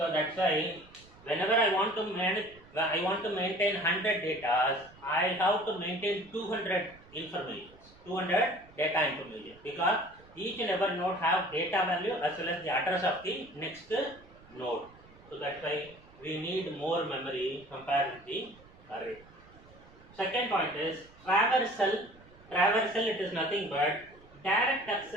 that's why whenever I want to maintain 100 data, I have to maintain 200 information, 200 data information, because each and every node have data value as well as the address of the next node. So that's why we need more memory compared with the array. Second point is traversal. Traversal, it is nothing but direct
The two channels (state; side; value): noise; right; rumble, 24 dB below the sound